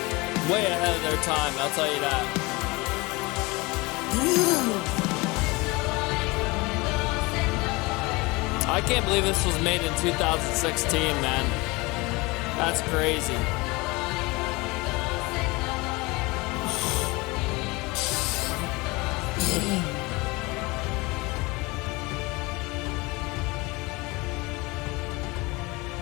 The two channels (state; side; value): quieter; right; 24.2 dB